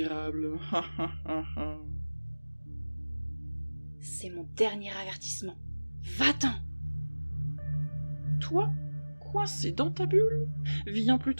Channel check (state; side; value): inverted; both; correlation -1.00